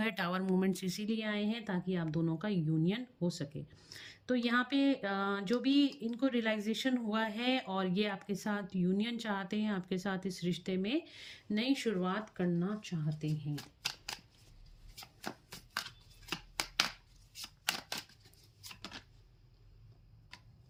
है। टावर मोमेंट्स इसीलिए आए हैं ताकि आप दोनों का यूनियन हो सके। तो यहाँ पे जो भी इनको रियलाइजेशन हुआ है और ये आपके साथ यूनियन चाहते हैं, आपके साथ इस रिश्ते में नई शुरुआत करना चाहते हैं।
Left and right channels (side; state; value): both; identical; correlation 1.00